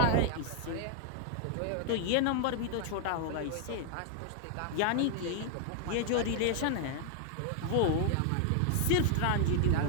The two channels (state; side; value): different; both; correlation 0.00